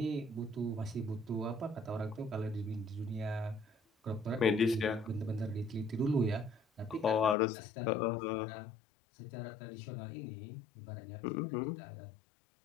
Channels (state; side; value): drops out; right; at 7.4 s